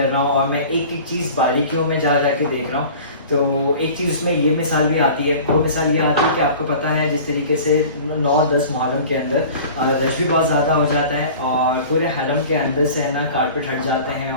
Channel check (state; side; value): inverted; both; correlation -0.41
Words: रहा हूँ और मैं एक एक चीज़ बारीकियों में जा के देख रहा हूँ। तो एक चीज़ उसमें ये मिसाल भी आती है, वो मिसाल ये आती है कि आपको पता है जिस तरीके से 9-10 मुहर्रम के अंदर रश भी बहुत ज़्यादा हो जाता है और पूरे हरम के अंदर से है ना कारपेट हट जाते हैं